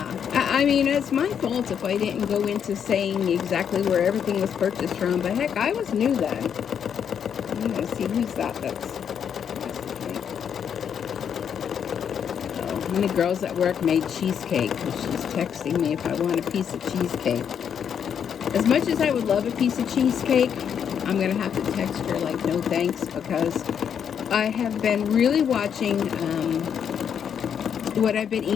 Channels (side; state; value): right; quieter; 8.0 dB